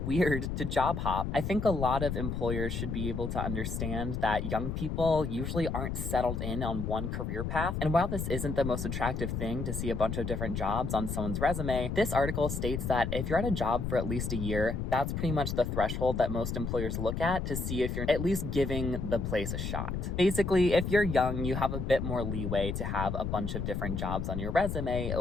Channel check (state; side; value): noise; left; rumble, 3 dB below the sound